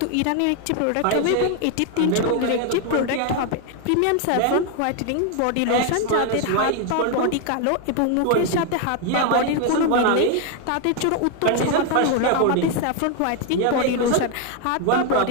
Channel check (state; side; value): different; both; correlation 0.01